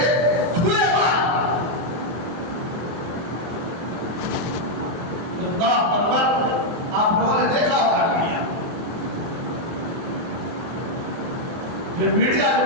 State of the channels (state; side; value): late; left; 24 ms